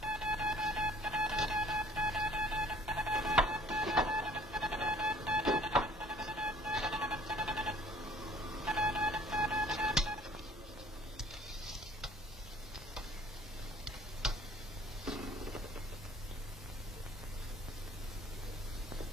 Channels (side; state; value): both; normal; correlation 0.55